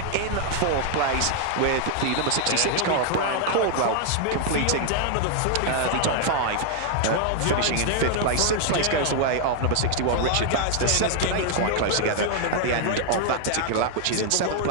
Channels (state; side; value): different; both; correlation 0.00